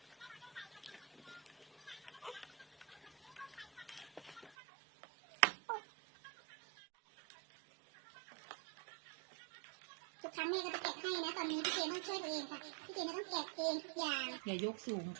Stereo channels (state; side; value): drops out; left; at 4.5 s